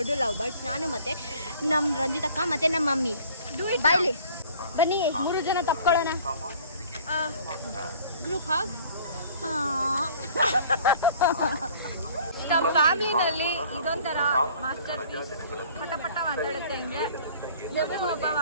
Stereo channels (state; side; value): inverted; both; correlation -0.51